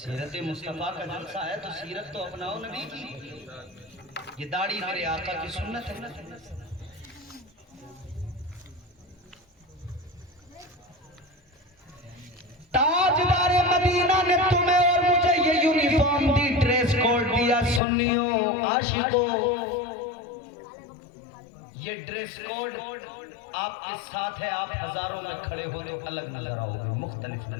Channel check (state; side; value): drops out; right; at 17.8 s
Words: मुस्तफा का जलसा है, तो सीरत तो अपनाओ नबी की। ये दाढ़ी मेरे आका की सुन्नत है। ताजदार मदीना ने तुम्हें और मुझे ये यूनिफॉर्म दी, ड्रेस कोड दिया। सुन्नियों, आशिकों, ये ड्रेस कोड आपके साथ है। आप हजारों में खड़े हो तो अलग नजर आओगे, मुख्तलिफ